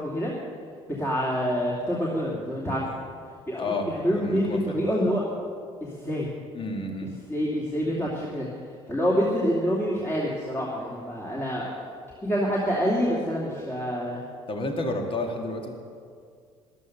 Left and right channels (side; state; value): both; normal; correlation 0.71